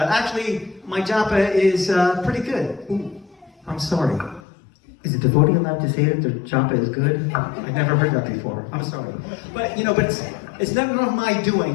Actually, my japa is pretty good. Ooh, I'm sorry. Is a devotee allowed to say that their japa is good? I've never heard that before. I'm sorry. But, you know, it's never my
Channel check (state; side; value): drops out; right; at 4.4 s